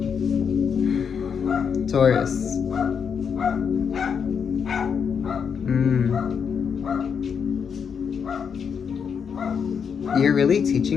Taurus. You're really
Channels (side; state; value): right; quieter; 6.8 dB